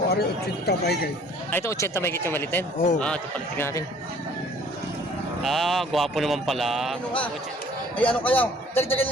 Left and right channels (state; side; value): normal; both; correlation 0.55